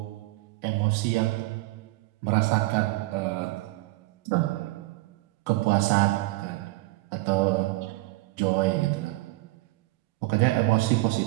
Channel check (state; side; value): quieter; left; 20.6 dB